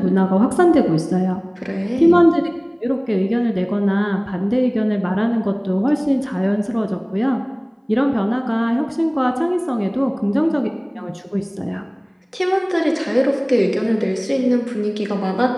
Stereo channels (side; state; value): both; identical; correlation 1.00